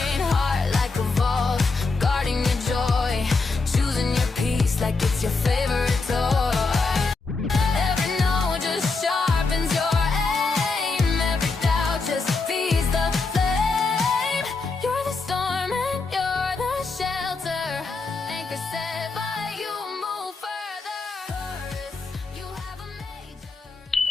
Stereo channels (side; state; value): right; quieter; 4.0 dB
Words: Heart like a vault, guarding your joy. Choosing your peace like it's your favorite toy. Every no just sharpens your aim. Every doubt just feeds the flame. You're the storm and you're the shelter. Anchor set by you, move further. You have a major.